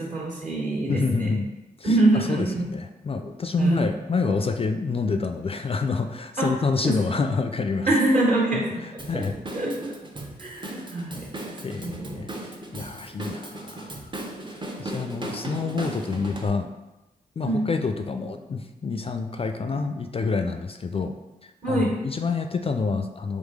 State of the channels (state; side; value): normal; both; correlation 0.72